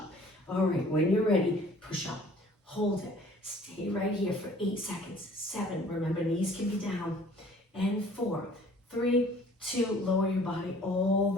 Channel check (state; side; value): normal; both; correlation 0.53